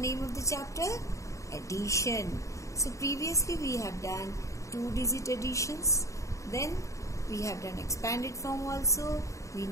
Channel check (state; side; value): late; right; 0.15 ms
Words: of the chapter? Addition. So, previously we have done 2-digit additions. Then we have done expanded form also. We